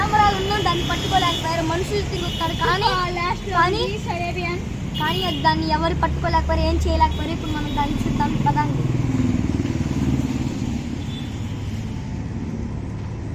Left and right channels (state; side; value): identical; both; correlation 1.00